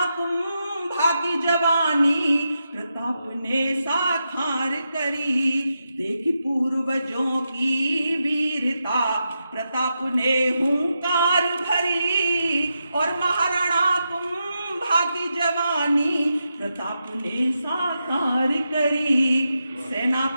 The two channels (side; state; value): both; inverted; correlation -0.86